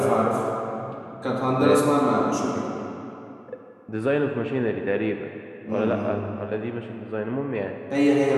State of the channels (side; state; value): both; identical; correlation 1.00